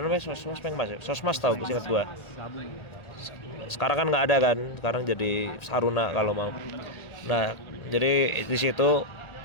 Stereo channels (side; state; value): right; late; 1.4 ms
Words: namanya Sosmas Pengmas ya. Sosmas tahu, ingat gua. Sekarang kan nggak ada kan, sekarang jadi Saruna kalau mau. Nah jadi di situ